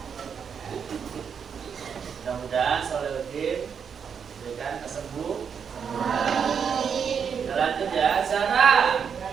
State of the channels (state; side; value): quieter; left; 7.0 dB